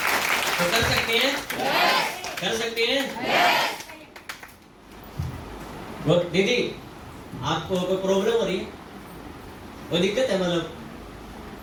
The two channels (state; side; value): identical; both; correlation 1.00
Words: तो कर सकते हैं? कर सकते हैं? दीदी आपको कोई प्रॉब्लम हो रही है, कोई दिक्कत है? मतलब